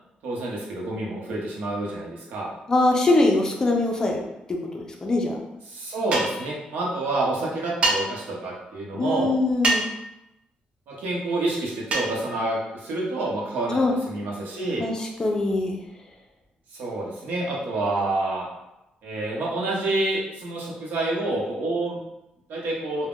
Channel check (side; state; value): both; normal; correlation 0.71